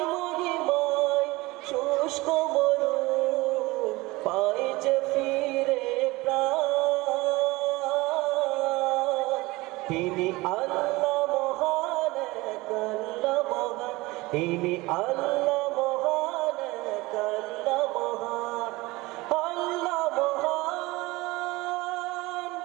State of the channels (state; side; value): quieter; left; 21.5 dB